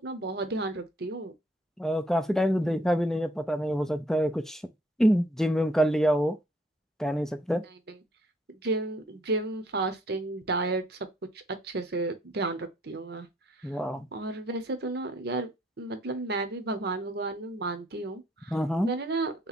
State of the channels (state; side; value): normal; both; correlation 0.65